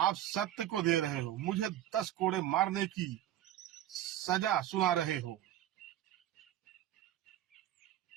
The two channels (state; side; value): quieter; left; 12.6 dB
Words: सत्य को दे रहे हो। मुझे 10 कोड़े मारने की सजा सुना रहे हो।